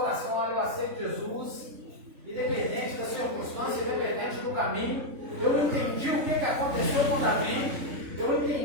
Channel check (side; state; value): left; late; 3.6 ms